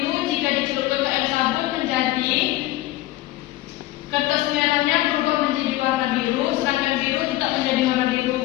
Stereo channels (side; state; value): right; quieter; 16.7 dB